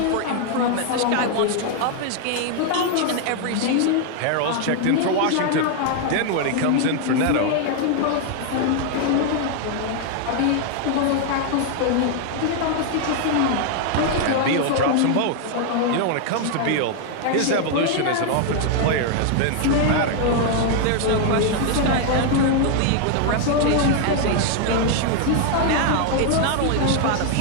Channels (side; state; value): both; different; correlation 0.00